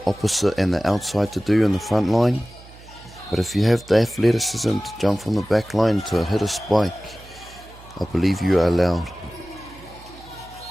opposite and the outside to do in the front line. But if you have the athleticism to jump from the back line to hit a spike, I believe you're allowed.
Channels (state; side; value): noise; right; hum, 21 dB below the sound